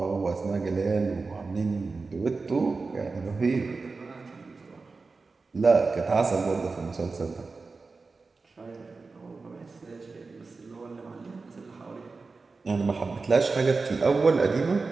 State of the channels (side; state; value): left; quieter; 4.1 dB